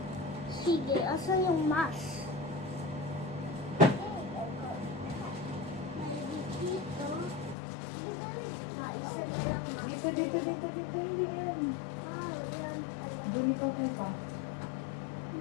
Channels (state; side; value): drops out; right; at 7.6 s